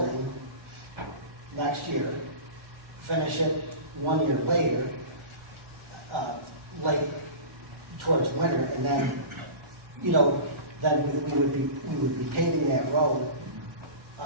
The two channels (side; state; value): left; late; 1.4 ms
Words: next year, finish it 1 year later, late towards winter, and then, then we would be paving that road,